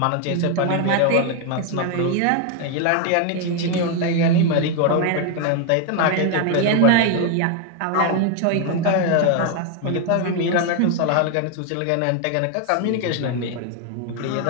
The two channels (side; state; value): both; different; correlation 0.01